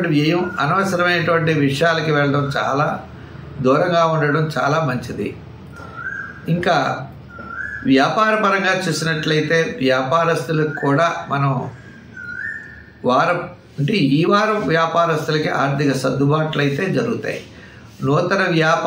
వ్యయం, అనవసరమైనటువంటి విషయాలకి వెళ్ళడం, చాలా దూరంగా ఉండడం చాలా మంచిది. ఇంకా వ్యాపార పరంగా చూసినట్లయితే వ్యాపారస్తులకు కూడా మనం ఈ వారం వ్యాపారస్తులకి ఆర్థిక సర్దుబాట్లు అయితే జరుగుతాయి. నూతన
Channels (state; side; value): identical; both; correlation 1.00